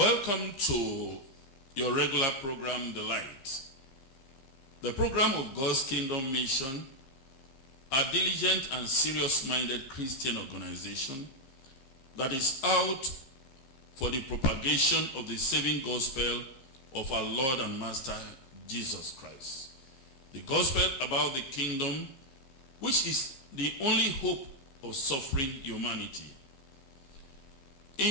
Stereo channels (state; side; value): late; right; 15 ms